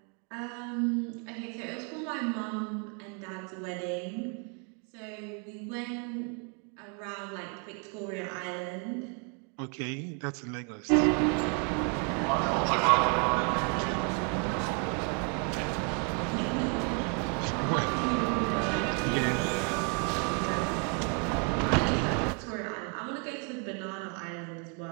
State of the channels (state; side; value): quieter; left; 38.2 dB